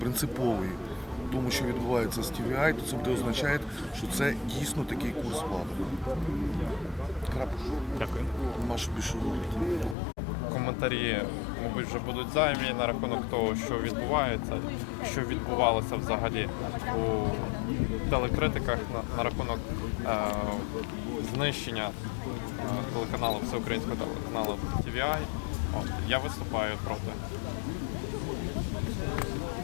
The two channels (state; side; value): drops out; right; at 10.0 s